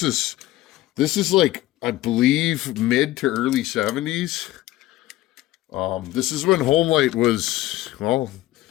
is like, I believe, mid to early 70s. This is when Homelite was, well,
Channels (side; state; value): right; quieter; 15.9 dB